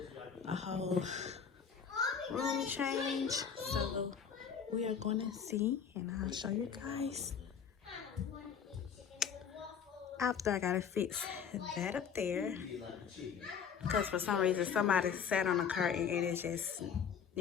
a whole room change. So we are going to see, and I'll show you guys after I got to fix that up there. Because for some reason, somebody sat on a curtain and it just,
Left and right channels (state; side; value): quieter; right; 7.2 dB